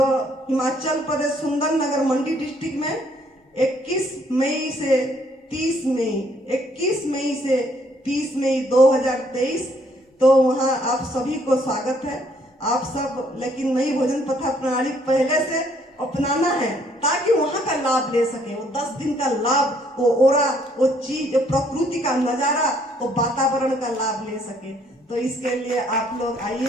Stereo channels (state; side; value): normal; both; correlation 0.66